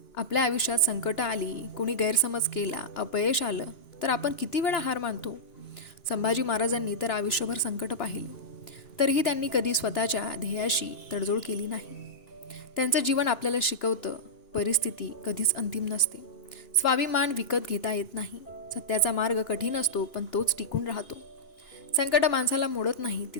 आपल्या आयुष्यात संकट आली, कोणी गैरसमज केला, अपयश आलं तर आपण किती वेळा हार मानतो. संभाजी महाराजांनी तर आयुष्यभर संकट पाहिले, तरीही त्यांनी कधी स्वतःच्या ध्येयाशी तडजोड केली नाही. त्यांचं जीवन आपल्याला शिकवतं, परिस्थिती कधीच अंतिम नसते, स्वाभिमान विकत घेता येत नाही. सत्याचा मार्ग कठीण असतो पण तोच टिकून राहतो. संकट माणसाला मोडत नाही, ती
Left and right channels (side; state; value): right; late; 3.0 ms